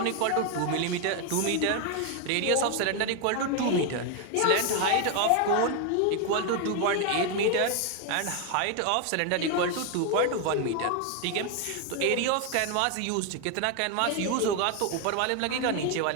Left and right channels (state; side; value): different; both; correlation 0.01